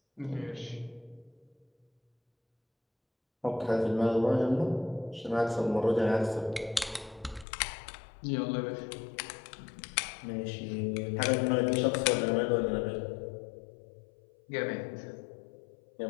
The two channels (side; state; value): right; drops out; at 7.5 s